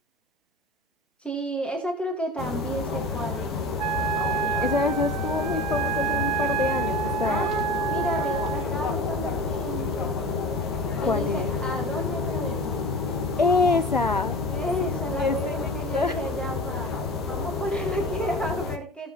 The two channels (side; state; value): both; normal; correlation 0.35